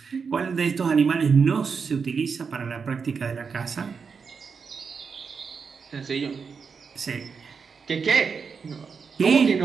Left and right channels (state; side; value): quieter; left; 5.6 dB